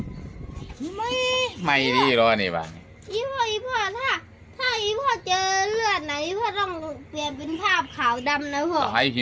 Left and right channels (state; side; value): identical; both; correlation 1.00